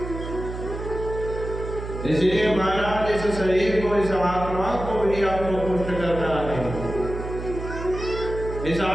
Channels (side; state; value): right; noise; hum, 8 dB below the sound